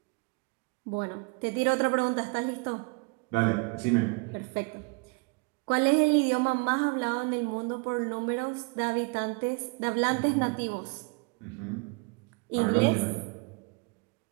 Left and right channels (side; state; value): left; quieter; 31.6 dB